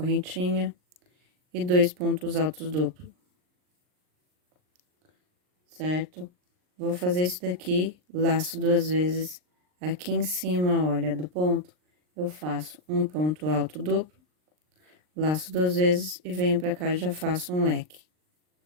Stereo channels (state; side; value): late; left; 39 ms